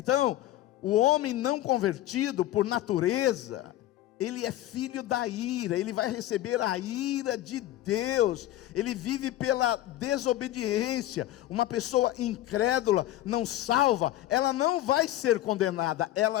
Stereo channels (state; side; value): quieter; right; 14.3 dB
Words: o homem não convertido por natureza, ele é filho da ira, ele vai receber a ira de Deus, ele vive pela desobediência. Uma pessoa incrédula, não salva, ela não vai ser condenada,